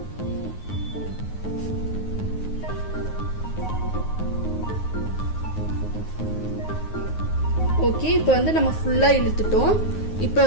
ஓகே, இப்போ வந்து நம்ம ஃபுல்லா இழுத்துட்டோம். இப்போ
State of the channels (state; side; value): late; right; 9.5 ms